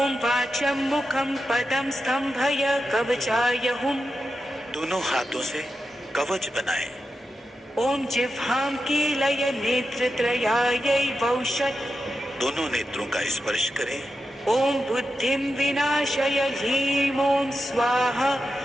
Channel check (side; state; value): both; normal; correlation 0.89